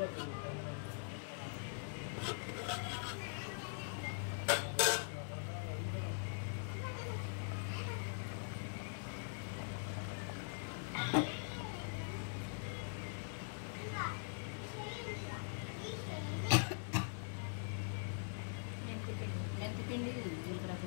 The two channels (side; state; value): right; silent; digital silence